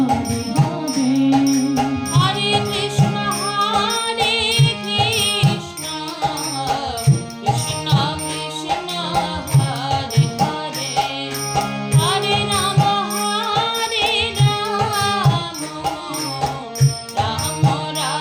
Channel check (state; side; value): identical; both; correlation 1.00